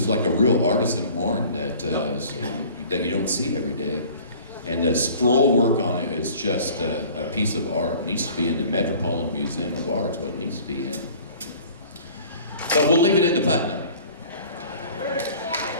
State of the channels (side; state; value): both; inverted; correlation -0.48